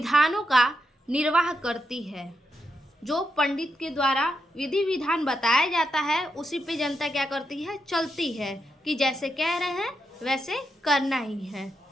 का निर्वाह करती है। जो पंडित के द्वारा विधि विधान बताया जाता है उसी पे जनता क्या करती है, चलती है कि जैसे कह रहे हैं वैसे करना ही है।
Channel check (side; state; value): both; normal; correlation 0.84